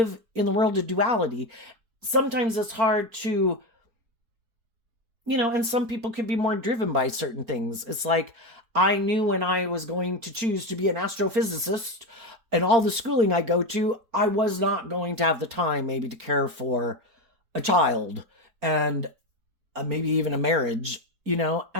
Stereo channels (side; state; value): left; late; 4.7 ms